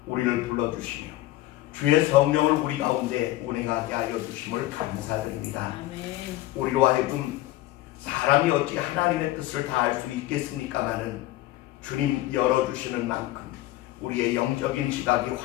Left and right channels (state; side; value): quieter; right; 16.5 dB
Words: 우리를 불러주시며 주의 성령을 우리 가운데 운행하게 하여 주심을 감사드립니다. 아멘. 우리로 하여금 사람이 어찌 하나님의 뜻을 다 알 수 있겠습니까마는 주님 열어주시는 만큼 우리의 영적인 지각이